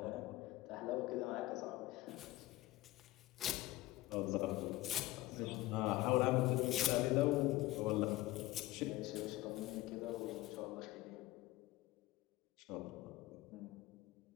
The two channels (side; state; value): right; quieter; 17.9 dB